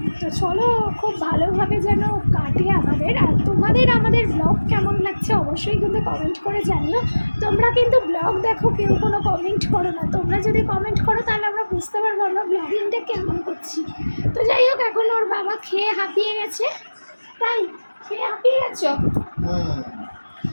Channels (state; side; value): inverted; both; correlation -1.00